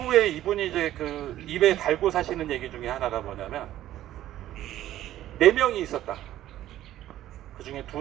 이분이 이제 입에 달고 사시는 얘기 중에 하나가 뭐냐면, 4명이 있었다. 그 중에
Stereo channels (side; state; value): left; quieter; 13.3 dB